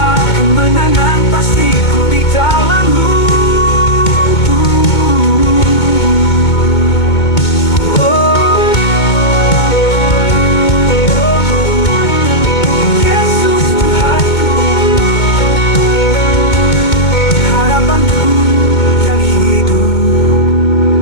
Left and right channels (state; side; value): late; right; 2.2 ms